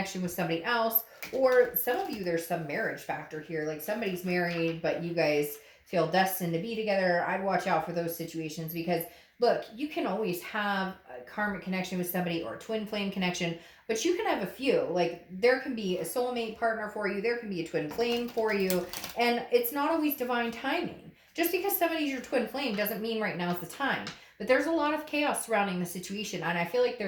with somebody else. Or some of you, there's some marriage factor here. Like, somebody's married, but you guys feel destined to be together. I'd watch out for those situations because, look, you can always have a karmic connection with somebody or a twin flame connection, but you can have a few. Like, there can be a soulmate partner for you. There can be a twin flame for you. And it's not always divine timing. Just because somebody's your twin flame doesn't mean right now is the time. But there's a lot of chaos surrounding the situation. And I feel like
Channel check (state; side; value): identical; both; correlation 1.00